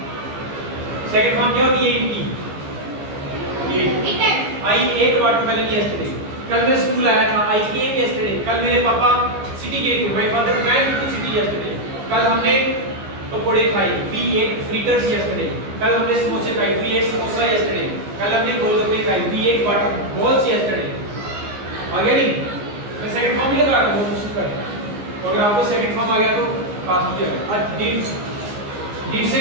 सेकंड फॉर्म क्या होती है? आई एट वाटरमेलन यस्टरडे। कल मैं स्कूल आया था, आई केम यस्टरडे। कल मेरे पापा सिटी गए थे, my father went to city yesterday. कल हमने पकोड़े खाए, वी एट फ्रिटर्स यस्टरडे। कल हमने समोसे खाए, वी एट समोसा यस्टरडे। कल हमने गोलगप्पे खाए, we ate water balls yesterday. आ गया नहीं? मैं सेकंड फॉर्म ही लगा रहा हूं, कोशिश कर। तो अगर आपको सेकंड फॉर्म आ गया तो पास हो जाएगा। और डिड से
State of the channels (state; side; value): late; left; 15 ms